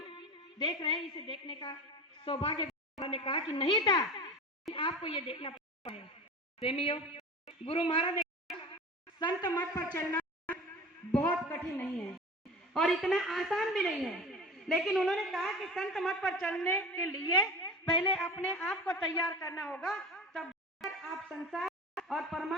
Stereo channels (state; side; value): normal; both; correlation 0.34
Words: देख रहे हैं इसे देखने का सौभाग्य ने कहा कि नहीं था, आपको ये देखना पड़ता है। प्रेमियों, गुरु महाराज ने संत मत पर चलना बहुत कठिन नहीं है और इतना आसान भी नहीं है, लेकिन उन्होंने कहा कि संत मत पर चलने के लिए पहले अपने आप को तैयार करना होगा, तब आप संसार और